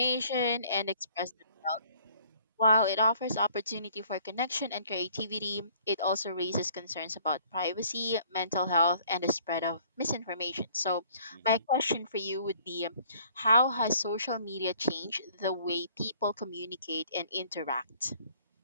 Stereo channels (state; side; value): inverted; both; correlation -0.58